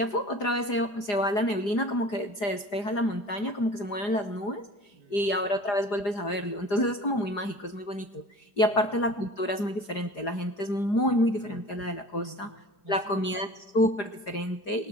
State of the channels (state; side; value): late; right; 4.9 ms